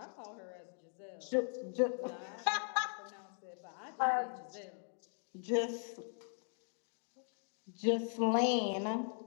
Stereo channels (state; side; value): silent; right; 51 dB below the other